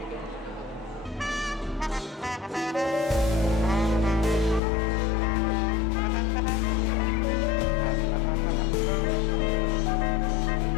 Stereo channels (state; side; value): drops out; right; at 4.6 s